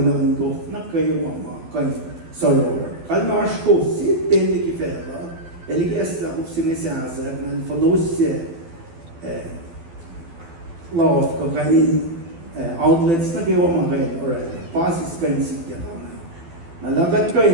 gof na kayo mama kan soror. Kalmash gof si teli kifela eliges la gof sine siasa na fonosye law ko kanin outlets na kayo mama kayo or pasis kan sikya kama. Nalagat ko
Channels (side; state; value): left; late; 12 ms